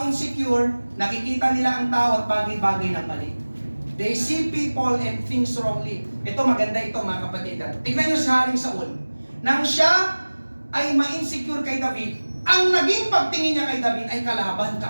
insecure, nakikita nila ang tao at bagay-bagay ng mali. They see people and things wrongly. Ito, maganda ito, mga kapatid. Tignan nyo si Haring Saul. Nang siya ay ma-insecure kay David, ang naging pagtingin niya kay David ay kalaban,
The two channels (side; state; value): both; inverted; correlation -1.00